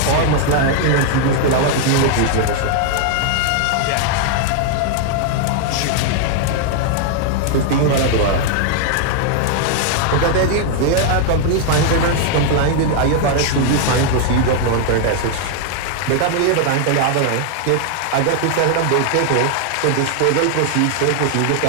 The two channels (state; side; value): different; both; correlation 0.00